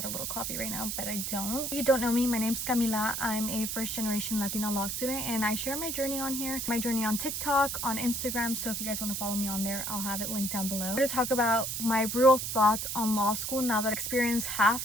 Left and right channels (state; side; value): noise; right; hiss, 3 dB below the sound